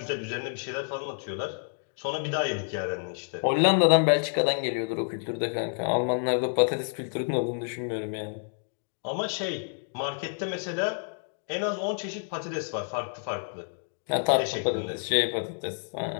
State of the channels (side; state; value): right; silent; 59 dB below the other